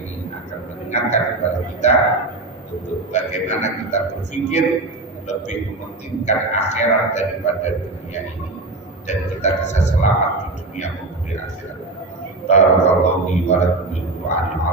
akan mengingatkan mengingatkan kepada kita untuk bagaimana kita berpikir lebih mementingkan akhirat daripada dunia ini, dan kita bisa selamat di dunia maupun di akhirat. Barakallahu li wa lakum bil Qur'anil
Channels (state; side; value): quieter; left; 3.1 dB